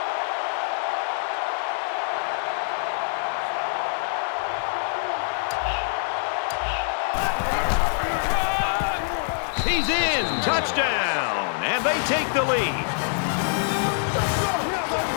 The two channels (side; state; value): right; silent; 59 dB below the other